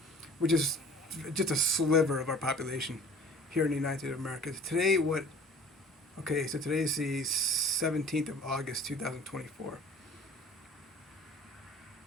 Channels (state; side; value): normal; both; correlation 0.47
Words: which is just a sliver of our population here in the United States of America. Today, so today's the 17th of August, 2024.